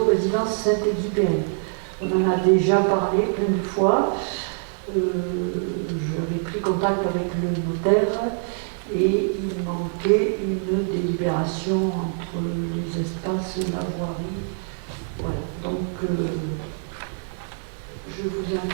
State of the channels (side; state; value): left; silent; digital silence